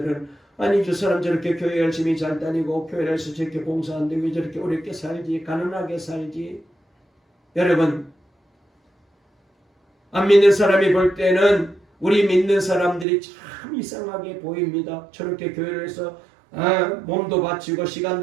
아니 저 사람 저렇게 교회 열심히 잘 다니고 교회에서 저렇게 봉사하는데 왜 저렇게 어렵게 살지 가난하게 살지. 여러분 안 믿는 사람이 볼 때는 우리 믿는 사람들이 참 이상하게 보입니다. 저렇게 교회를 해서 몸도 바치고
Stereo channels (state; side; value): drops out; left; at 13.1 s